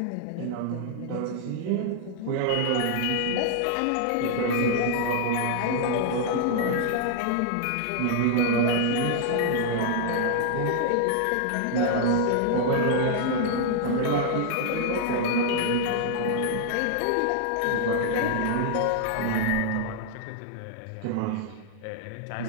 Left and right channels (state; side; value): different; both; correlation -0.01